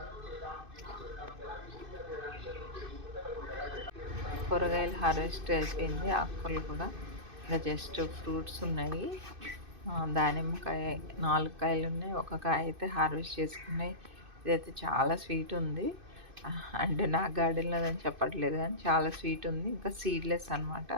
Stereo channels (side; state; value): left; late; 2.6 ms